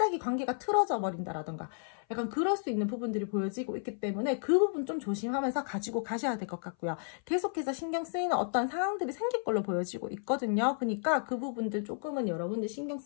관계가 틀어져 버린다라던가, 약간 그럴 수 있는 부분들이 보여지고 있기 때문에 그 부분 좀 조심하면서 가지고 가셔야 될 것 같고요. 계속해서 신경 쓰이는 어떤 상황들이 생길 걸로 보여지고 있거든요. 그러니까 그 부분들 조금은 여러분들 신경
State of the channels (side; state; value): right; silent; 56 dB below the other